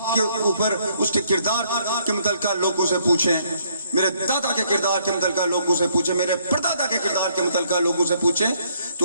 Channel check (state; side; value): inverted; both; correlation -0.68